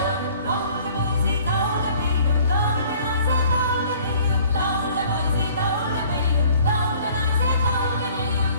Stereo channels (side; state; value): both; inverted; correlation -0.54